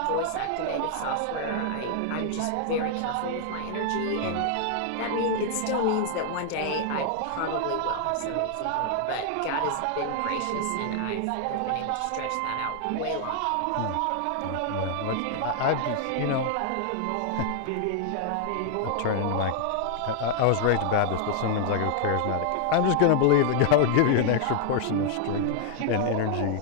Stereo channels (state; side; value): different; both; correlation 0.00